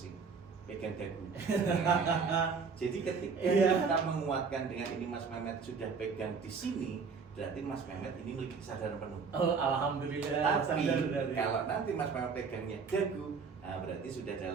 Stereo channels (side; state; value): left; quieter; 5.3 dB